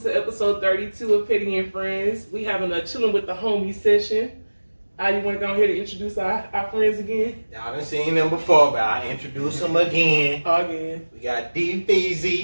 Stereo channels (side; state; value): both; inverted; correlation -1.00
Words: to episode 32 of Petty and Friends. We having a chilling with the homies session. You want to go ahead and introduce our friends again? Y'all done seen them before, but I'll introduce them again. We got D